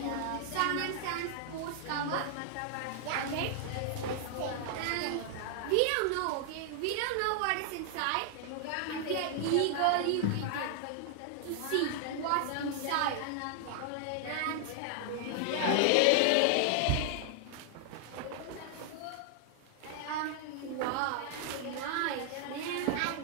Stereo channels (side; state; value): both; different; correlation 0.00